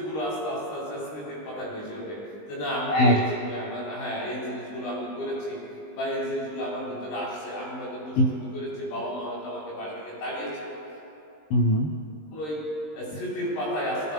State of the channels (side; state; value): right; late; 20 ms